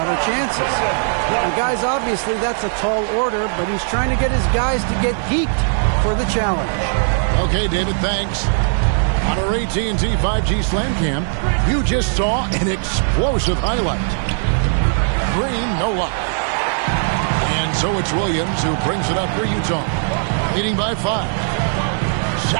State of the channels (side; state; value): left; silent; digital silence